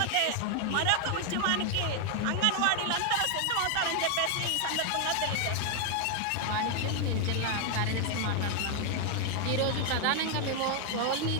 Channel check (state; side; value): different; both; correlation 0.00